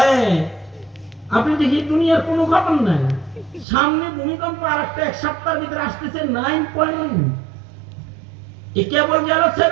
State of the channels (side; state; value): left; drops out; at 3.7 s